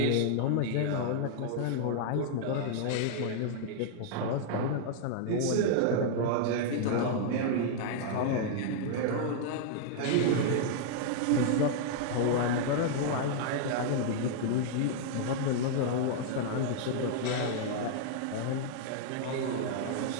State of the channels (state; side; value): different; both; correlation -0.01